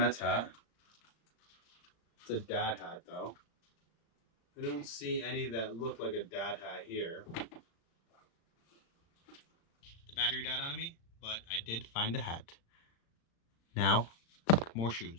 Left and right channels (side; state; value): right; late; 36 ms